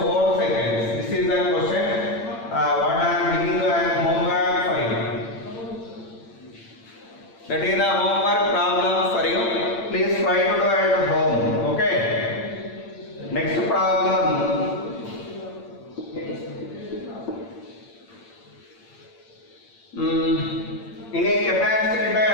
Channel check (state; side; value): late; right; 8.8 ms